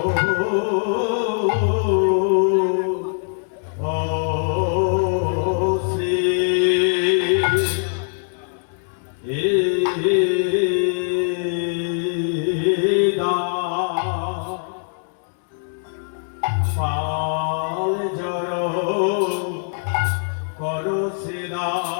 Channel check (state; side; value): silent; right; digital silence